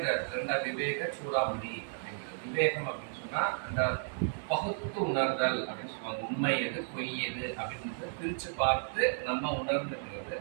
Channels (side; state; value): left; silent; 55 dB below the other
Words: இந்த ரெண்டா விவேக சூடாமணி அப்படிங்கிறது. விவேகம் அப்படின்னு சொன்னா அந்த பகுத்து உணர்தல் அப்படின்னு சொல்லுவாங்க. உண்மை எது பொய் எது அப்படின்னு பிரிச்சு பார்த்து நம்ம உணர்ந்துக்கிறது,